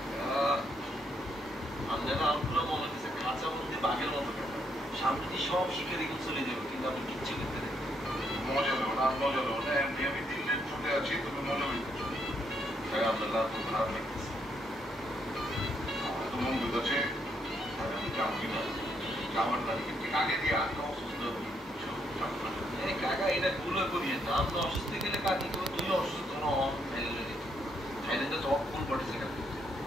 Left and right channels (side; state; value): both; normal; correlation 0.74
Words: চোখের সামনে দিয়ে সব মজা করবো আমাদের মনে হওয়ার পারবো না সে এত ভাই আপনারা আমগুলো মনে হচ্ছে খাঁচা মধ্যে বাঘের মতো কাটা সামনে দিয়ে সব শিকারি চলে যাবে কিন্তু আপনি কিচ্ছু করতে দেবেন মজা নেব না মজা নেব না এমনি আমি 3 দিন ছুটে আছি তুমি মজা নিতেছো তাই আপনার খুব খারাপ লাগতেছে তো মন বুঝেছে আমি যাবো কিনা যাওয়ার না কিন্তু আগে দিয়ে আমি অসুস্থ কাকা এটা ভুল করিয়ে না আপনি অসুস্থ গেলে কাকি কেউ তুমি অসুস্থ থাইল্যান্ডে তো ফুল পড়েছে